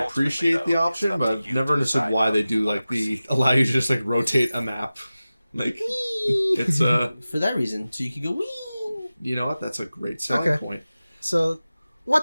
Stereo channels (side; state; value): both; inverted; correlation -0.96